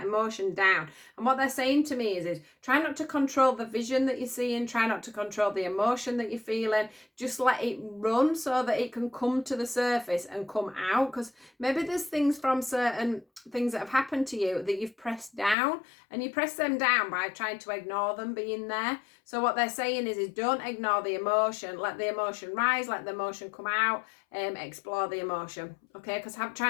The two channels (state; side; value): drops out; right; at 15.6 s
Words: emotion down. And what they're saying to me is try not to control the vision that you're seeing, try not to control the emotion that you're feeling. Just let it run so that it can come to the surface and come out. Because maybe there's things from certain things that have happened to you that you've pressed down, and you press them down by trying to ignore them being there. So what they're saying is don't ignore the emotion, let the emotion rise, let the emotion come out, explore the emotion, okay? Because